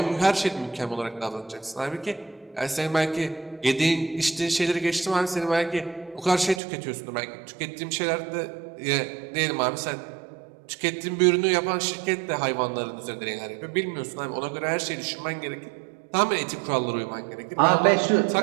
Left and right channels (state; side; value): drops out; left; at 6.6 s